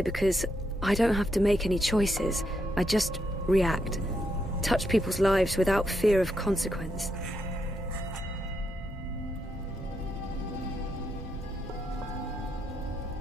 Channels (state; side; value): normal; both; correlation 0.80